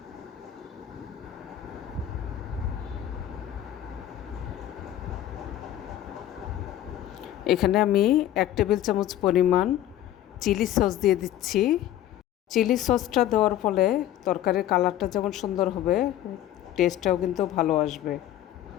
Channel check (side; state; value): right; quieter; 12.4 dB